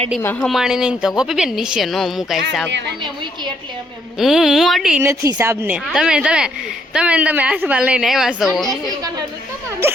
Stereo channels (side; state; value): both; normal; correlation 0.72